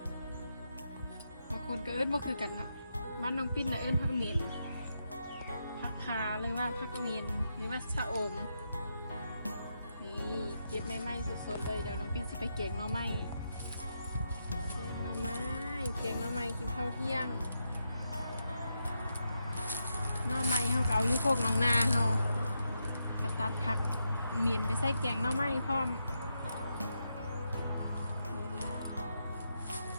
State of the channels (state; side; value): inverted; both; correlation -0.84